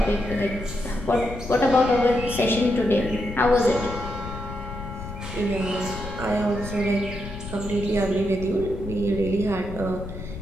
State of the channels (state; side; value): noise; left; rumble, 10 dB below the sound